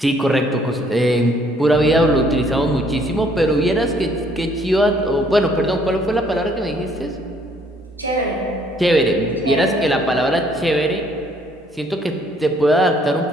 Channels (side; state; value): both; normal; correlation 0.64